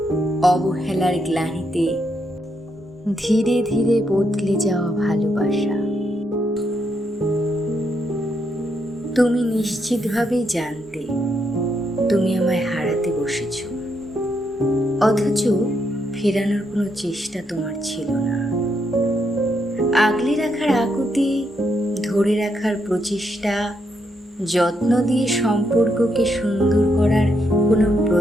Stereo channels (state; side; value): normal; both; correlation 0.78